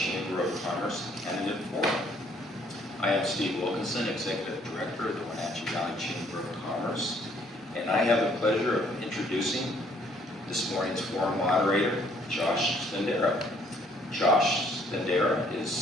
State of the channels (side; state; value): both; normal; correlation 0.63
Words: of Commerce Candidate Forum. I am Steve Wilkinson, Executive Director of the Wenatchee Valley Chamber of Commerce, and I have the pleasure of introducing this morning's forum moderator, Josh Stendera. Josh Stendera is